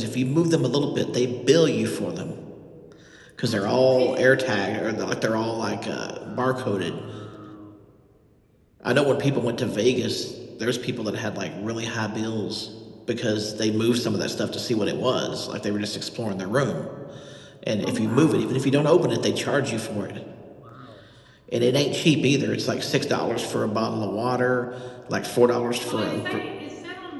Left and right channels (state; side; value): identical; both; correlation 1.00